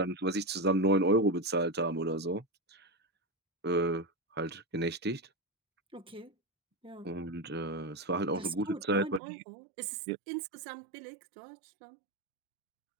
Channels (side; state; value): left; drops out; at 9.2 s